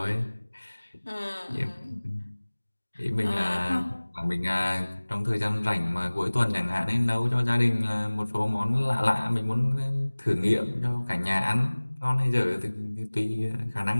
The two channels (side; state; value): both; inverted; correlation -1.00